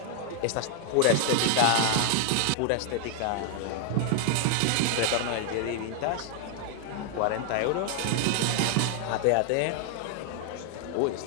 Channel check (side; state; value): both; different; correlation 0.00